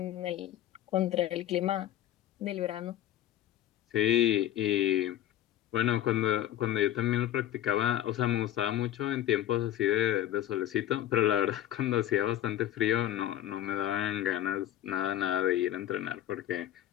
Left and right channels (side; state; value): right; quieter; 12.4 dB